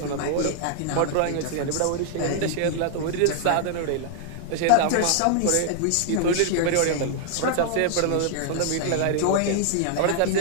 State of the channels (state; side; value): different; both; correlation -0.01